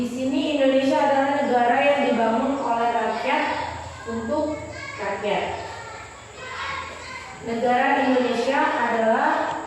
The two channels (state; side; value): identical; both; correlation 1.00